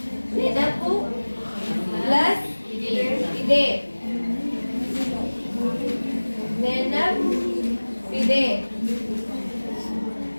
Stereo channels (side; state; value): both; inverted; correlation -1.00